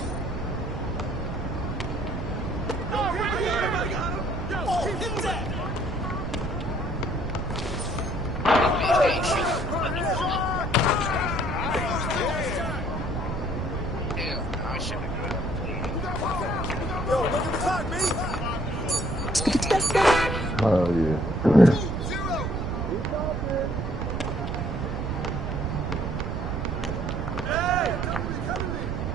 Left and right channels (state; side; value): noise; right; rumble, 4 dB below the sound